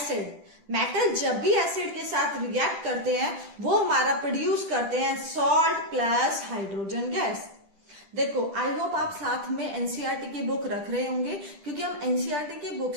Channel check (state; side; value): late; left; 10 ms